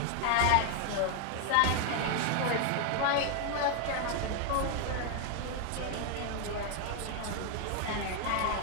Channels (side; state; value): both; different; correlation 0.00